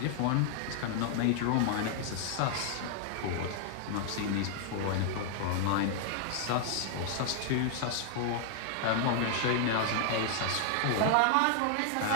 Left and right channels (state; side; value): different; both; correlation -0.01